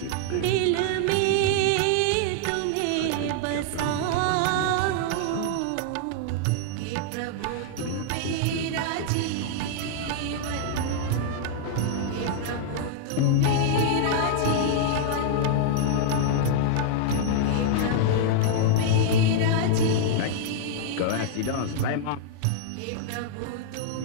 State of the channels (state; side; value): different; both; correlation -0.01